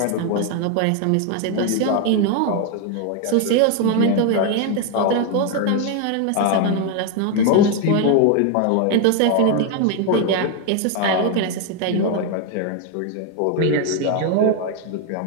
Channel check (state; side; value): different; both; correlation 0.01